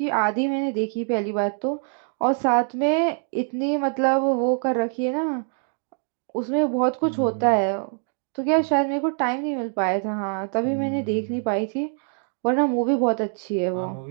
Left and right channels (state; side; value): silent; left; 55 dB below the other